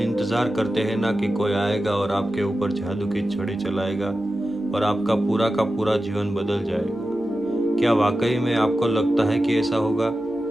इंतज़ार करते हैं ना कि कोई आएगा और आपके ऊपर जादू की छड़ी चलाएगा और आपका पूरा का पूरा जीवन बदल जाएगा। क्या वाकई में आपको लगता है कि ऐसा होगा,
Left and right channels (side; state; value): both; normal; correlation 0.93